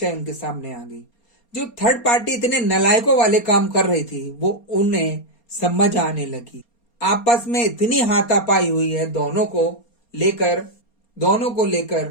उनके सामने आ गई। जो थर्ड पार्टी इतने नलायकों वाले काम कर रही थी वो उन्हें समझ आने लगी। आपस में इतनी हाथापाई हुई है दोनों को लेकर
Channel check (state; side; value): late; right; 4.3 ms